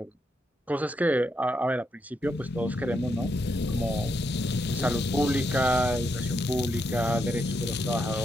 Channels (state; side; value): normal; both; correlation 0.80